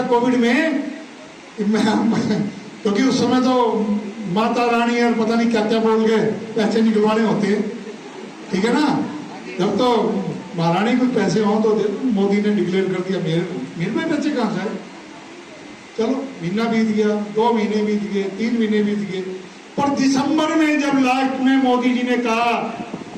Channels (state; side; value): identical; both; correlation 1.00